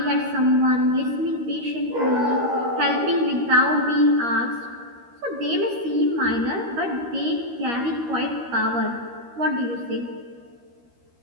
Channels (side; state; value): left; late; 13 ms